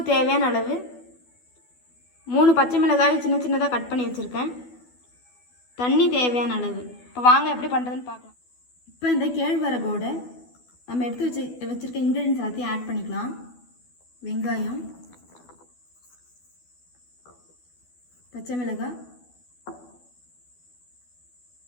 தேவையான அளவு, 3 பச்சை மிளகாய் சின்ன சின்னதா கட் பண்ணி வச்சிருக்கேன். தண்ணி தேவையான அளவு. இப்போ வாங்க எப்படி பண்ணுறதுன்னு பார்க்கலாம். இப்போ இந்த கேழ்வரகோட நம்ம எடுத்து வச்சிருக்க இன்க்ரீடியன்ஸ் எல்லாத்தையும் ஆட் பண்ணிக்கலாம். வெங்காயம், பச்சை மிளகாய்,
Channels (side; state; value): right; late; 12 ms